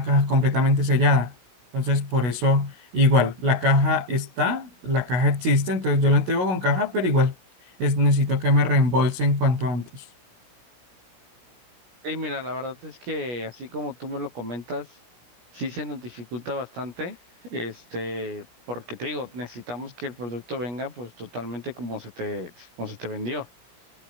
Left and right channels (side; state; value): left; late; 16 ms